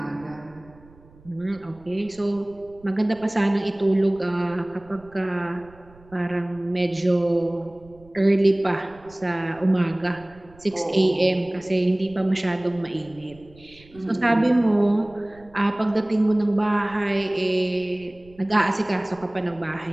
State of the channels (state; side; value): noise; right; rumble, 25 dB below the sound